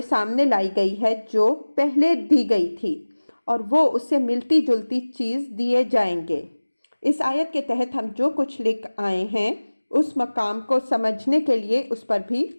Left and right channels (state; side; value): inverted; both; correlation -1.00